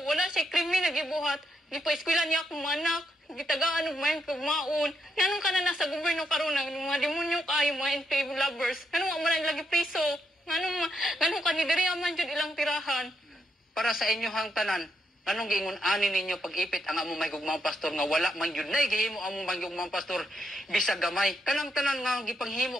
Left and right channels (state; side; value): normal; both; correlation 0.79